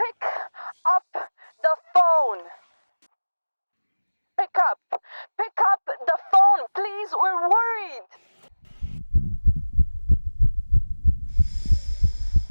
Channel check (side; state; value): both; inverted; correlation -1.00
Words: up the phone. Pick up. Pick up the phone, please. We're worried.